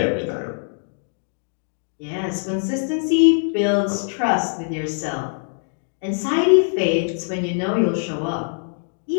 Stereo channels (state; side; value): silent; right; 63 dB below the other